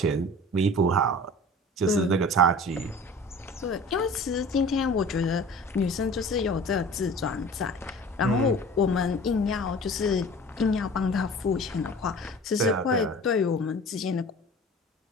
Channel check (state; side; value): normal; both; correlation 0.42